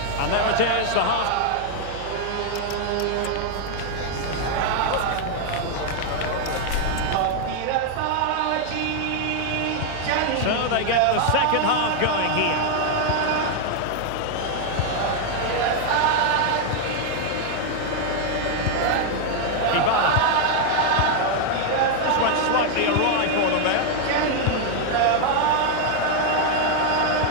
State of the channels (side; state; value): both; different; correlation 0.00